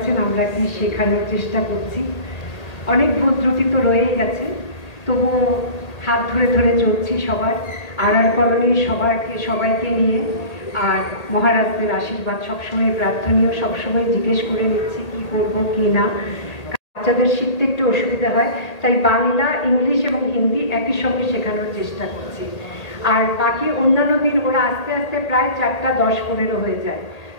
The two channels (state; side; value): late; right; 1.8 ms